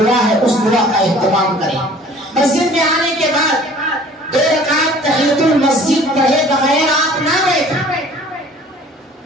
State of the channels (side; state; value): both; normal; correlation 0.50